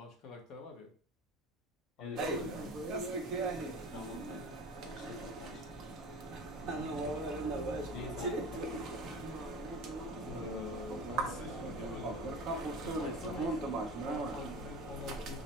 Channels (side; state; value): both; normal; correlation 0.35